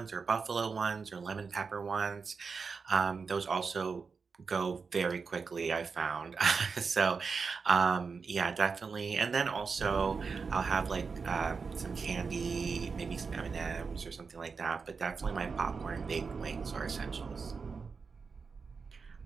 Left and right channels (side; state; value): left; quieter; 5.1 dB